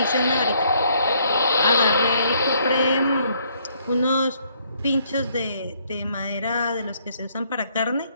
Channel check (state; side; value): inverted; both; correlation -0.68